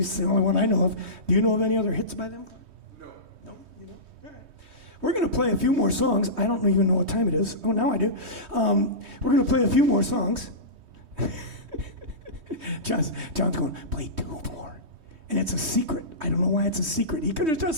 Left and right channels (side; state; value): left; late; 3.2 ms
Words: the only one I know of. Do you know of any other hits by them? No. No? You know? All right. We're going to play a few more songs. I don't even know what time it is. Oh, now I do. We're going to play a few more songs. John's going, play 2 more. And it's a secret. I don't know why it's a secret. He could have